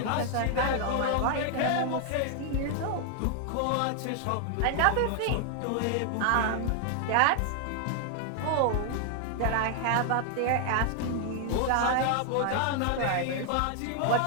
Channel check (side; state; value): both; different; correlation 0.00